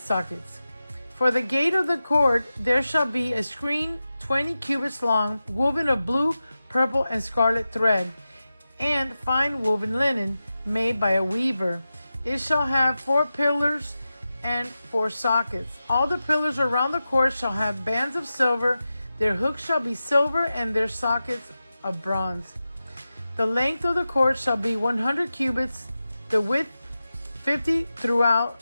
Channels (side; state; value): both; inverted; correlation -0.93